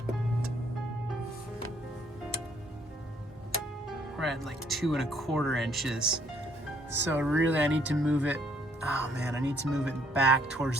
we're at like 2.25 inches. So really I need to move it, oh man, I need to move it back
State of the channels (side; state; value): both; normal; correlation 0.66